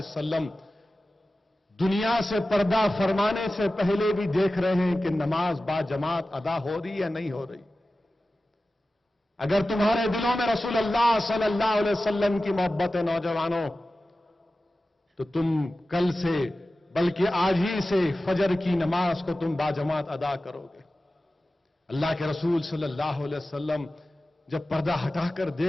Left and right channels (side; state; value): both; normal; correlation 0.95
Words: دنیا سے پردہ فرمانے سے پہلے بھی دیکھ رہے ہیں کہ نماز با جماعت ادا ہو رہی یا نہیں ہو رہی. اگر تمہارے دلوں میں رسول اللہ صلی اللہ علیہ وسلم کی محبت ہے نوجوانوں، تو تم کل سے بلکہ آج ہی سے فجر کی نماز کو تم با جماعت ادا کرو گے. اللہ کے رسول صلی اللہ علیہ وسلم جب پردہ ہٹا کر